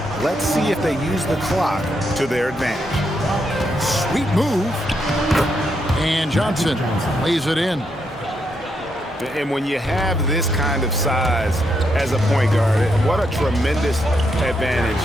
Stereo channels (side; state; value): both; normal; correlation 0.79